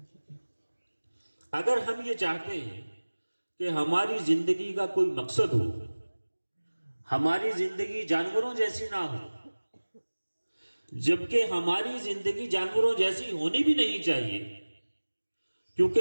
اگر ہم یہ چاہتے ہیں کہ ہماری زندگی کا کوئی مقصد ہو، ہماری زندگی جانوروں جیسی نہ ہو، جبکہ ہماری زندگی جانوروں جیسی ہونی بھی نہیں چاہیے،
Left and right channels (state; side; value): inverted; both; correlation -1.00